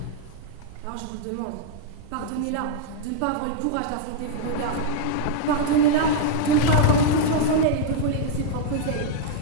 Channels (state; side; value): different; both; correlation -0.01